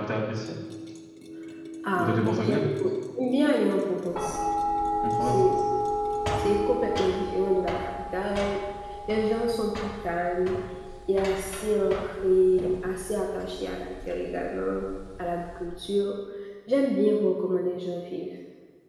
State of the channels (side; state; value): both; identical; correlation 1.00